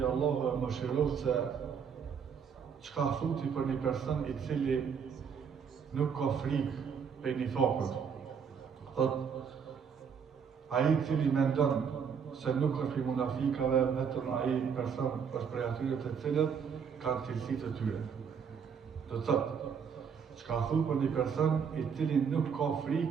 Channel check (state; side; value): quieter; left; 6.8 dB